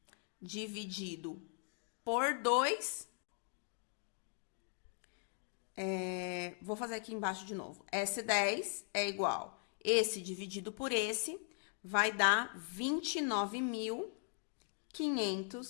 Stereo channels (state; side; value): silent; right; 51 dB below the other